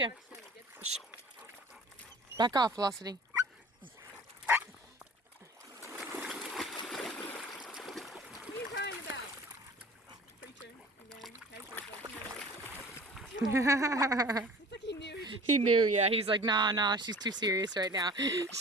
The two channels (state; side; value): normal; both; correlation 0.44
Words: Shh. Back off, Velocity. What are you crying about? Preacher, again. It's like he knew. He knew, yeah. He's like, nah, she's too serious right now.